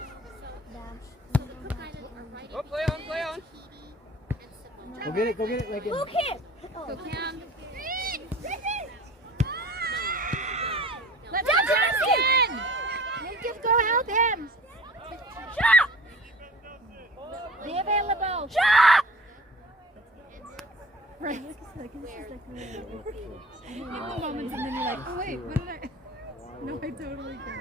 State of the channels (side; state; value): both; normal; correlation 0.43